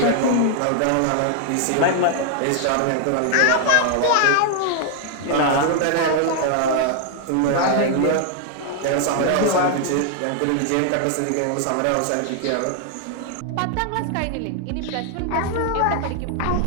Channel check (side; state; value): both; different; correlation 0.00